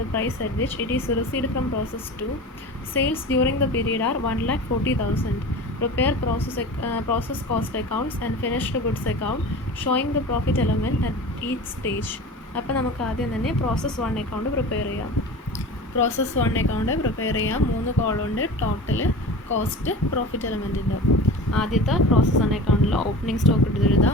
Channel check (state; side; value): normal; both; correlation 0.35